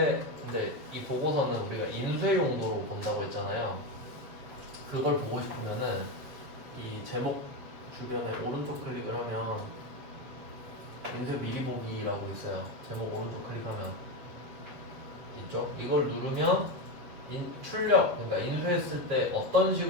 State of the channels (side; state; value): left; late; 7.9 ms